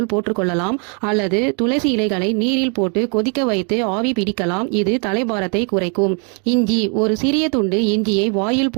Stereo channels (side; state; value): left; quieter; 37.9 dB